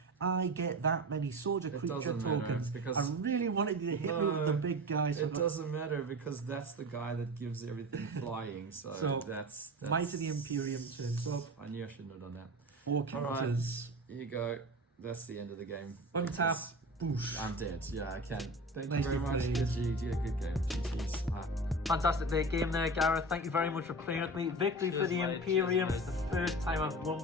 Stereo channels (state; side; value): normal; both; correlation 0.31